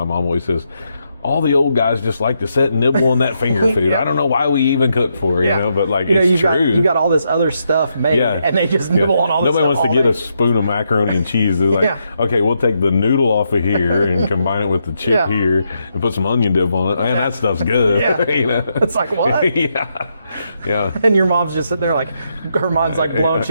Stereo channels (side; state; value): both; inverted; correlation -0.80